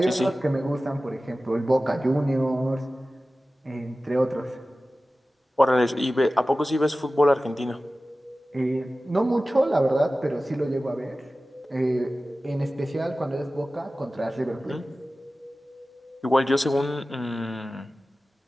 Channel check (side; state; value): both; normal; correlation 0.96